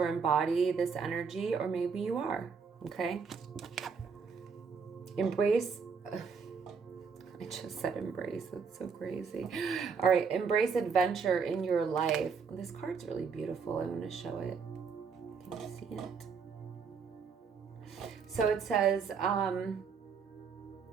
embody this energy, or maybe you are, okay? Embrace. I just said embrace. That's so crazy. All right. Embrace adventure in your life. This card's really beautiful. I want to show it. Can you see it? So it says, wow.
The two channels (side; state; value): left; quieter; 5.7 dB